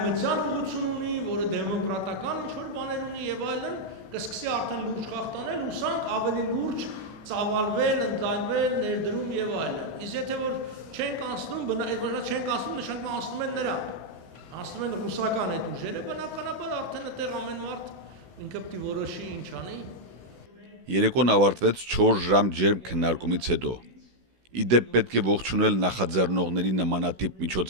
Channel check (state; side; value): late; left; 16 ms